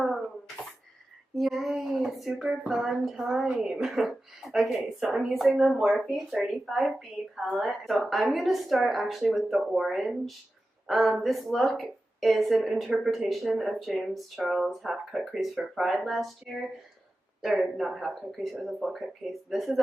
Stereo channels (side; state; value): both; normal; correlation 0.93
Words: Yay, super fun time. Okay, so I'm using the Morphe 35B palette. So I'm going to start actually with the orange. This look is an interpretation of James Charles' half-cut crease for Pride last year. Or not half-cut crease, it was a full-cut crease. This is